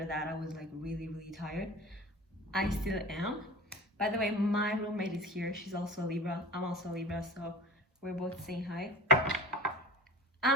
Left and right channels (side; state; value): both; normal; correlation 0.37